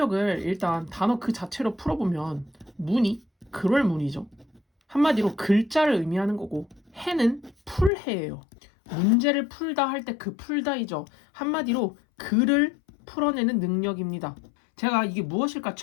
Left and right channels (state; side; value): drops out; right; at 7.9 s